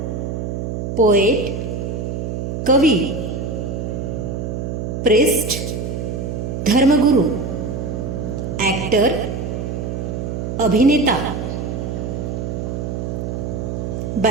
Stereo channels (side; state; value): right; noise; hum, 3 dB below the sound